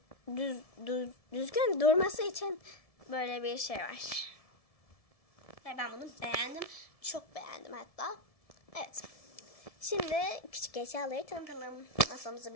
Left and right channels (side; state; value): right; late; 1.7 ms